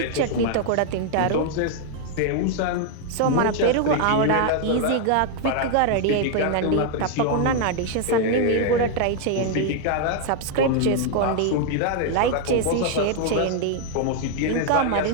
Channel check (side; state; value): both; different; correlation 0.00